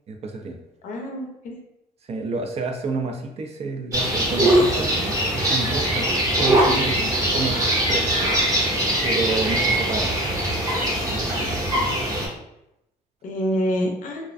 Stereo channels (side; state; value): both; normal; correlation 0.37